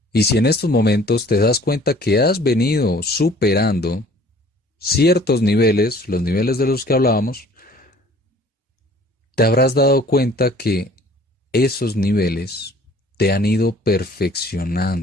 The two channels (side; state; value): both; normal; correlation 0.52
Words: Y si en estos momentos te das cuenta que has venido superando ciertos niveles, los niveles de los que hablábamos, te habrás dado cuenta que esos niveles te han ido